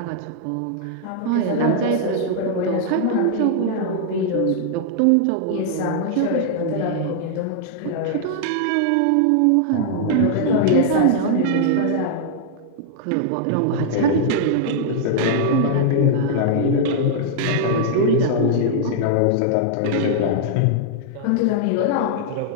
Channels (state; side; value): different; both; correlation -0.01